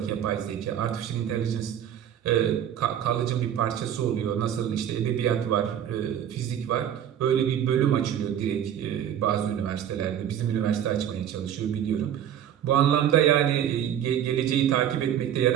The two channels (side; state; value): left; quieter; 10.0 dB